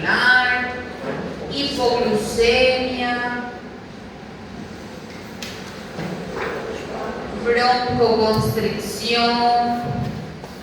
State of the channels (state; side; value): identical; both; correlation 1.00